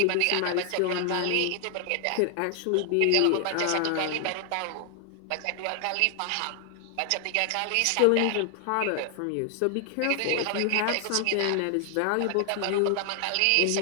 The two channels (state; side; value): different; both; correlation 0.00